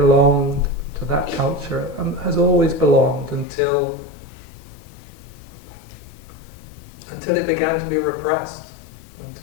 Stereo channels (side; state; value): right; drops out; at 3.5 s